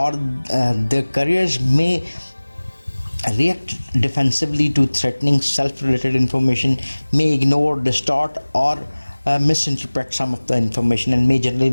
देयर करियर्स में react defensively to threatening self-related information, may ignore, distort or misinterpret some of the information and may generally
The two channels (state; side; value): inverted; both; correlation -1.00